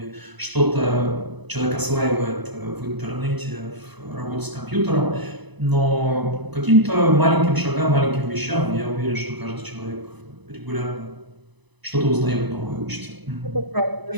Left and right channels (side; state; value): left; late; 1.0 ms